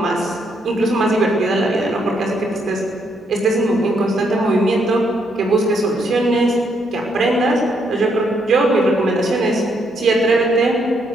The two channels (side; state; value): both; normal; correlation 0.74